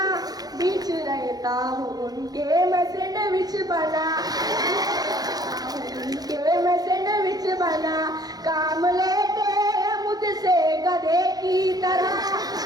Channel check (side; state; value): left; late; 0.19 ms